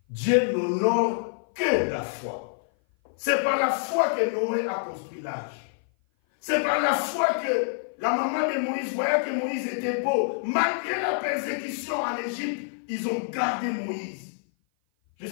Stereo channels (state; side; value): silent; right; 56 dB below the other